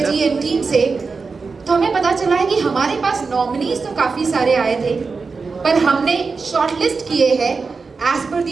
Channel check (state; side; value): quieter; left; 4.6 dB